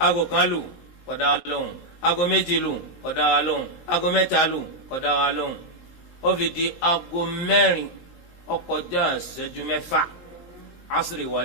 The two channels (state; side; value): late; right; 19 ms